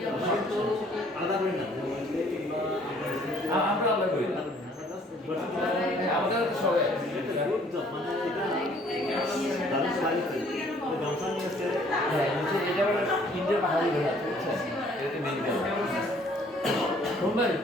আলাদা করি না আমরা আলাদা করি না আমাদের সবাই ইন্ডিয়ার পাহাড়ি শুনবেন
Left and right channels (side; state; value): both; normal; correlation 0.59